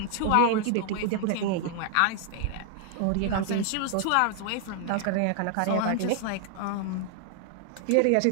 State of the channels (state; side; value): different; both; correlation 0.00